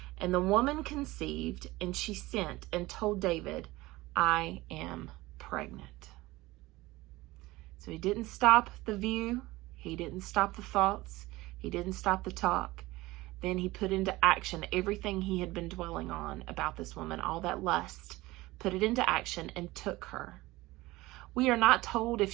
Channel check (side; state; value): left; quieter; 19.6 dB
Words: And the woman conceived, and she sent and told David, I am pregnant. So he didn't stop the view. He didn't stop the thoughts. He didn't stop the talk. Then he put into action everything he had been dwelling on about this woman, all that lust, put it into action and took her. We are not told if